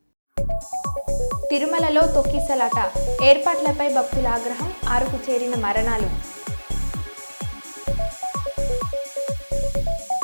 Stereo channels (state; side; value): inverted; both; correlation -1.00